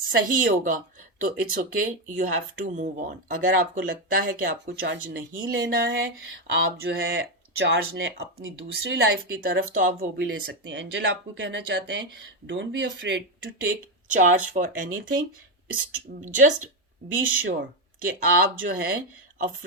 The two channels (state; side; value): normal; both; correlation 0.08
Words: होगा, तो it's okay, you have to move on. अगर आपको लगता है कि आपको चार्ज नहीं लेना है, आप जो है चार्ज लें अपनी दूसरी लाइफ की तरफ, तो आप वो भी ले सकते हैं। एंजल आपको कहना चाहते हैं don't be afraid to take charge for anything, just be sure कि आप जो है